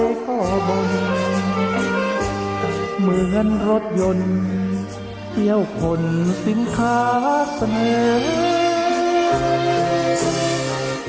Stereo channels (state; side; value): identical; both; correlation 1.00